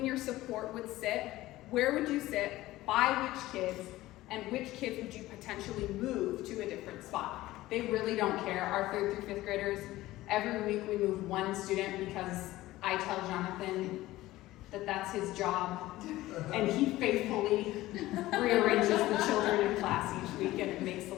your support would sit, where would you sit, by which kids, and which kids would you potentially move to a different spot? They really don't care. Our 3rd through 5th graders, every week we move one student because I tell Jonathan that that's his job, and he faithfully rearranges the children in class each week, and it makes the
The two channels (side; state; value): right; quieter; 16.9 dB